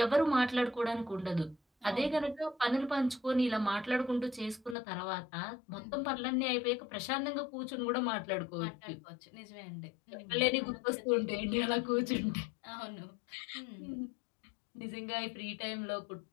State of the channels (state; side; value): drops out; right; at 4.8 s